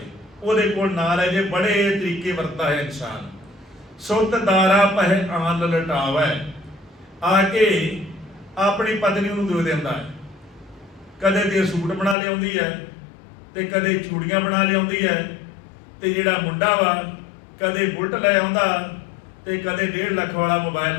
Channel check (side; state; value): right; drops out; at 12.2 s